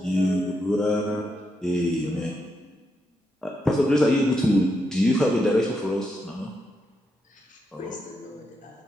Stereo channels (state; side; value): normal; both; correlation 0.82